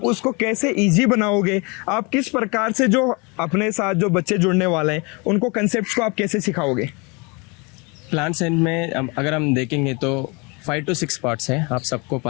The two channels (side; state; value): right; quieter; 29.4 dB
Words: उसको कैसे इजी बनाओगे? आप किस प्रकार से जो अपने साथ जो बच्चे जुड़ने वाले हैं उनको कंसेप्ट्स को आप कैसे सिखाओगे? प्लांट साइंस में अगर हम देखेंगे तो 5 to 6 पार्ट्स हैं। आप सबको